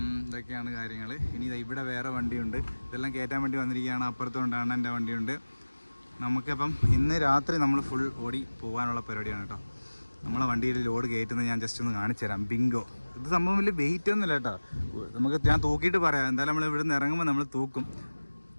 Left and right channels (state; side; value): inverted; both; correlation -1.00